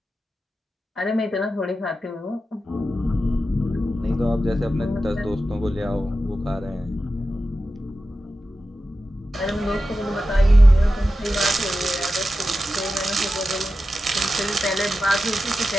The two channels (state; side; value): normal; both; correlation 0.92